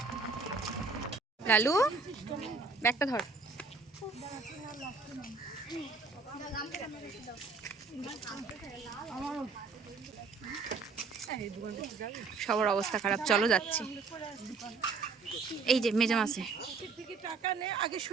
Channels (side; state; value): left; quieter; 4.5 dB